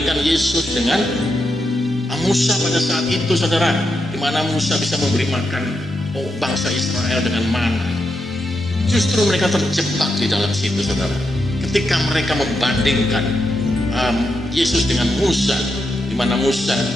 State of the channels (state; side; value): normal; both; correlation 0.84